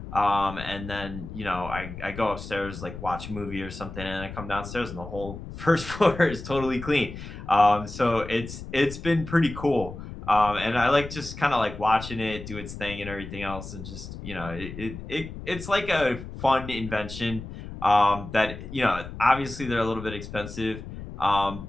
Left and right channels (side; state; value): left; noise; rumble, 11 dB below the sound